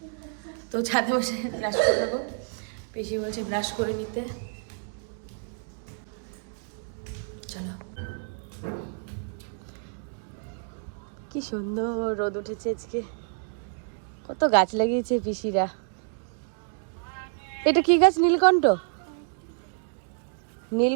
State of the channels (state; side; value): silent; left; 57 dB below the other